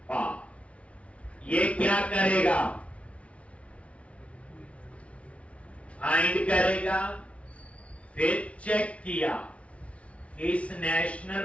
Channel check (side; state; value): right; late; 0.063 ms